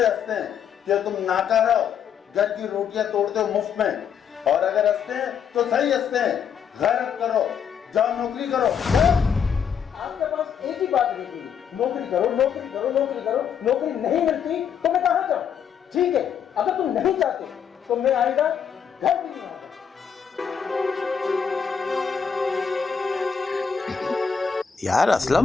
हंसते हैं कि तुम नाकारा हो, घर की रोटियां तोड़ते हो मुफ्त में। और अगर हंसते हैं तो सही हंसते हैं। गैरत करो, जाओ नौकरी करो। आपके पास एक ही बात रहती है, नौकरी करो, नौकरी करो, नौकरी करो। नौकरी नहीं मिलती तो मैं कहाँ जाऊँ? ठीक है, अगर तुम नहीं चाहते तो मैं आएगा, घर भी नहीं आऊंगा। यार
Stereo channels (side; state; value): right; quieter; 7.5 dB